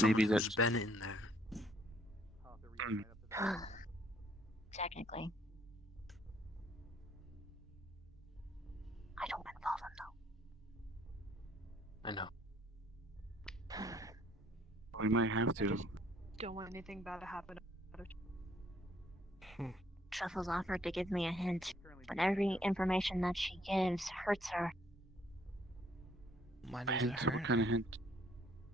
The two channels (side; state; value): both; normal; correlation 0.65